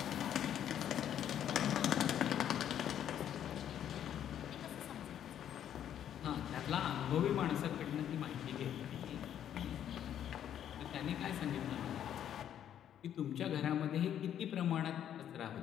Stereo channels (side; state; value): right; quieter; 10.1 dB